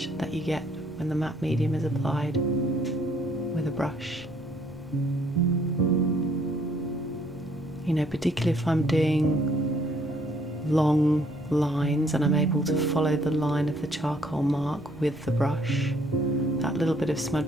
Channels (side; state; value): both; normal; correlation 0.64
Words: that you get when the matte medium is applied with a brush. You know, particularly if I'm doing long lines and I'm able to follow the line of the charcoal mark with the brush, that little bit of